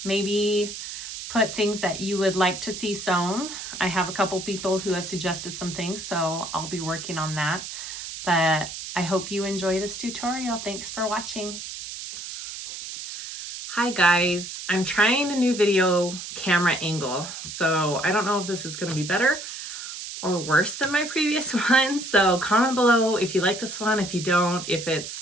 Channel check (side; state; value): right; noise; hiss, 9 dB below the sound